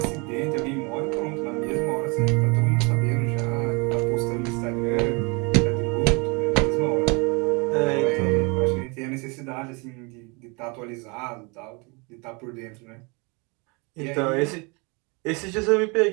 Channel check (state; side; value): quieter; left; 30.2 dB